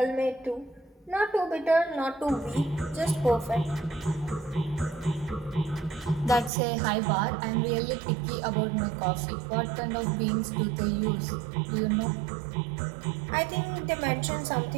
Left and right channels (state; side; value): drops out; left; at 6.5 s